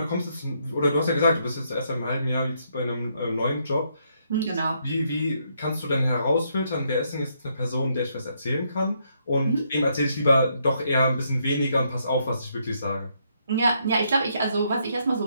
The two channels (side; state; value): both; inverted; correlation -0.74